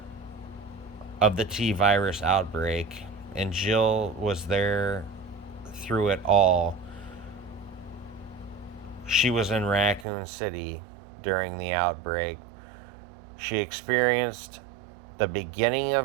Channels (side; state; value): left; drops out; at 10.1 s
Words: of the T-virus outbreak, and Jill was there through it all. She was in Raccoon City during the outbreak. She experienced the beginning